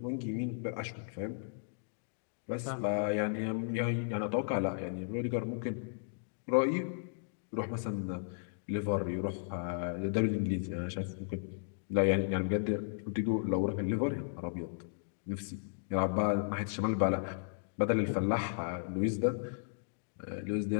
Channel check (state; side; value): silent; right; digital silence